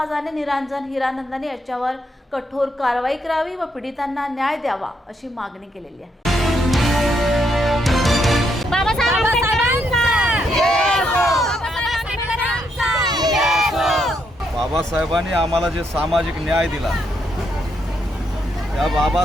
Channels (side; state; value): both; normal; correlation 0.77